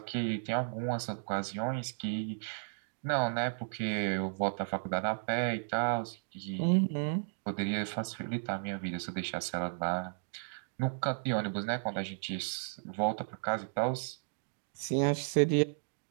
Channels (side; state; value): left; silent; digital silence